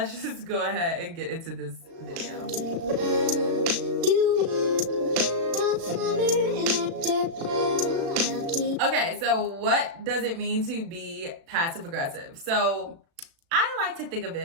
just go ahead and get into this video. Okay, so what does it mean to be passive aggressive? So I like to think of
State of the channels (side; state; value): left; late; 36 ms